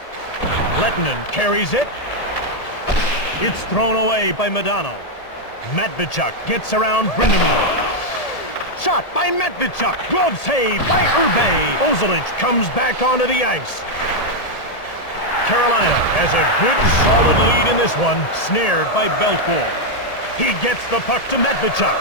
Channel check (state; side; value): late; right; 1.8 ms